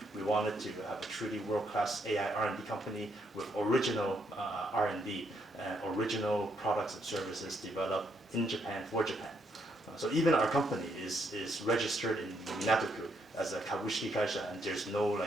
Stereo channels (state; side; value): normal; both; correlation 0.75